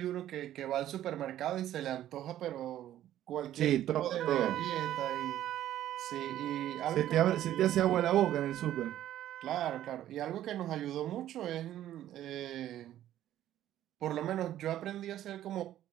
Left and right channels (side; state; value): left; quieter; 12.5 dB